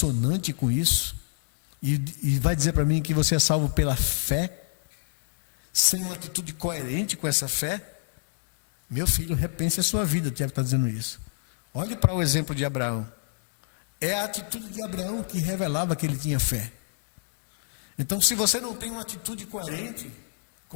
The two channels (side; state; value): right; silent; digital silence